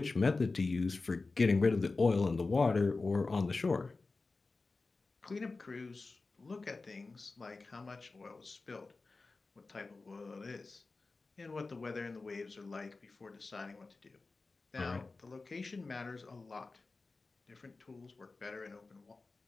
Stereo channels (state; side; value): quieter; right; 3.7 dB